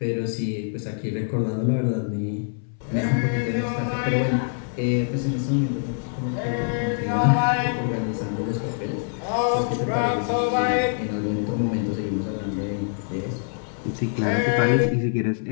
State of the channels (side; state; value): right; silent; 62 dB below the other